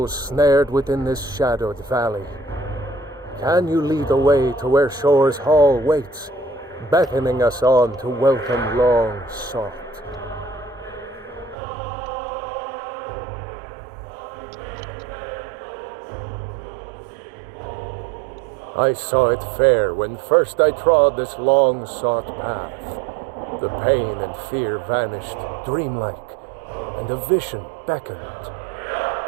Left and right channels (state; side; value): drops out; left; at 11.6 s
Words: snared within this shadowed valley. Can you lead the way to where Shore's Hall waits, beckoning us on to welcome long sought? I saw it fair when first I trod this long-sought path. The pain and fear vanished, dreamlike, and a vision beckoned.